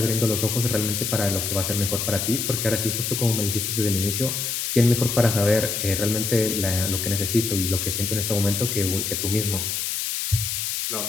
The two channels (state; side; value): noise; left; hiss, 2 dB below the sound